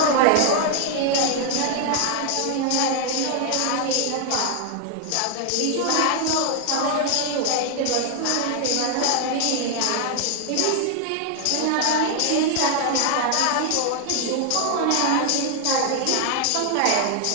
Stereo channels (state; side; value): different; both; correlation 0.00